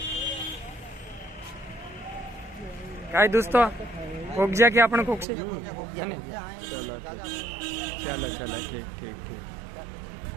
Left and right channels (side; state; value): left; drops out; at 5.2 s